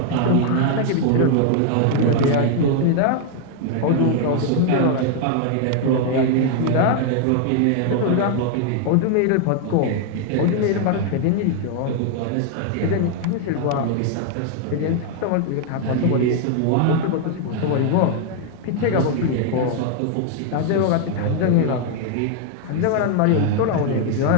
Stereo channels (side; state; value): both; different; correlation 0.00